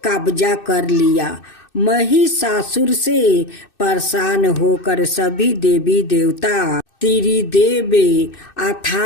कब्जा कर लिया। महिषासुर से परेशान होकर सभी देवी देवता त्रिदेव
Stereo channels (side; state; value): right; late; 2.6 ms